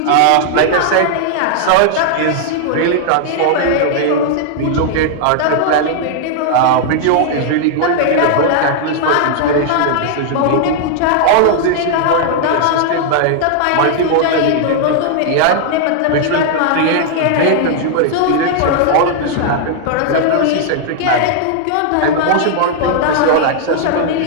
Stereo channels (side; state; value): both; different; correlation 0.00